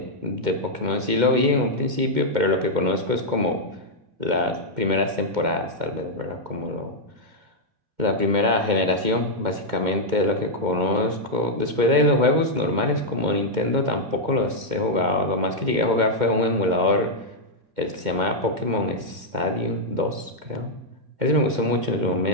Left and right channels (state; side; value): late; left; 2.1 ms